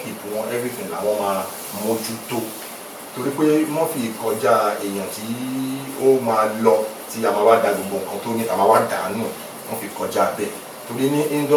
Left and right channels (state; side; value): identical; both; correlation 1.00